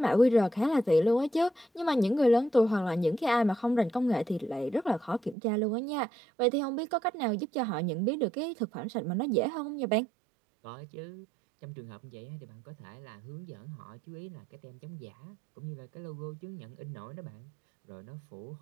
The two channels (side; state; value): left; drops out; at 5.4 s